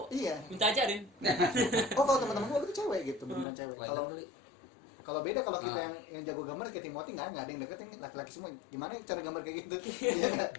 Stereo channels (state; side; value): drops out; right; at 3.5 s